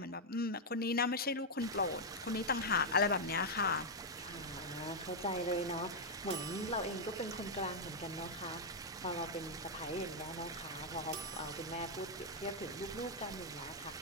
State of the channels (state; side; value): normal; both; correlation -0.02